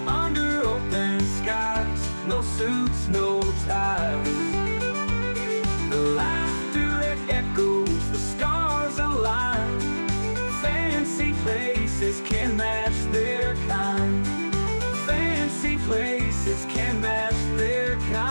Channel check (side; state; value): both; inverted; correlation -1.00